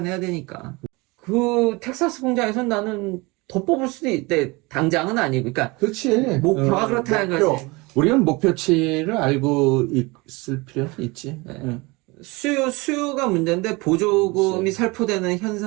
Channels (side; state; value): left; quieter; 24.8 dB